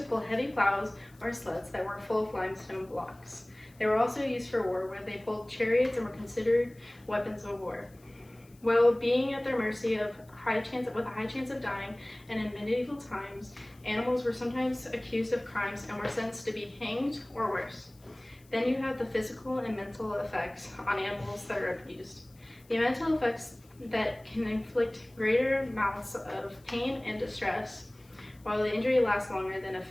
pull heavy plows or sleds that were full of limestone blocks. They were also used for war, where they pulled chariots and were considered weapons of war. While being at their mercy with a high chance of dying, and in medieval times, animals were sometimes accused of crimes and were sentenced to be hanged or worse. Then you have the physical and mental effects on animals that are abused. The mental effects that can inflict greater amounts of pain and distress, while the injury lasts longer than a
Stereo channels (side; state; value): left; noise; hiss, 29 dB below the sound